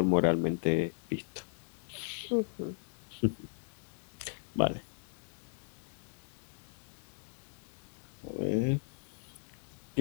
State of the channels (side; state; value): right; silent; digital silence